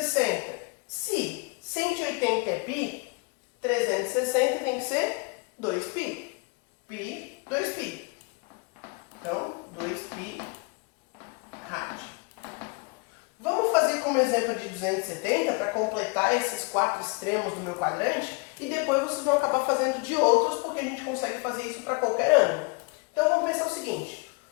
Se 180 é pi, 360 tem que ser 2π. Pi, 2π. Então, 2π rádio. Vamos fazer como exemplo de 270 para completar esses 4 extremos do meu quadrante e depois vocês vão acabar fazendo de outros porque a gente consegue fazer isso para qualquer ângulo. Então vamos pensar o seguinte,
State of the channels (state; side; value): quieter; right; 30.1 dB